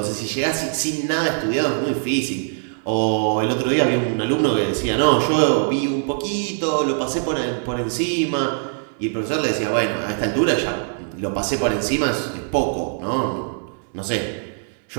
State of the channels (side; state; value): left; silent; digital silence